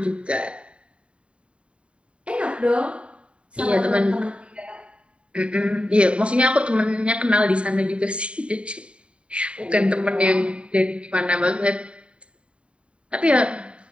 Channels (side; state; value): left; late; 0.059 ms